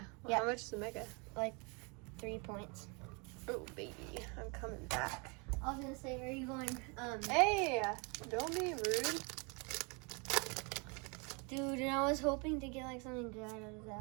Well, Yeah. How much is a Mega? 3 points. Oh, baby. I'm coming back. I was gonna say, are you going, Hey! Don't be rude. dude, and I was hoping to get like something good out of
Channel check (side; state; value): left; quieter; 32.0 dB